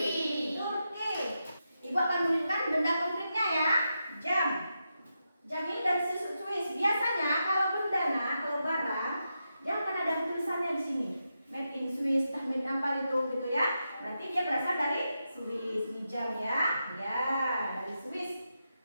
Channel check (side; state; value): both; inverted; correlation -0.87